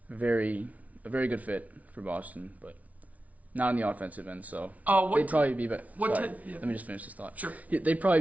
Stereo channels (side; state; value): left; late; 0.070 ms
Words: a very good fit for Boston, but not on the offensive end. So they'd probably be better. Let me just finish this thought. Sure. They'd probably